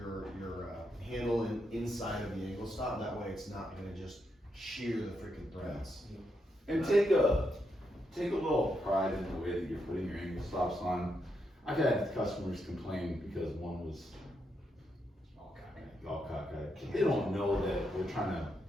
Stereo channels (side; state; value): both; normal; correlation 0.81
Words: handle inside of the angle stop. That way it's not gonna just shear the freaking threads. And take a little pride in the way that you're putting your angle stops on. I've had customers complain because one was all cockeyed. They don't know that we're trying to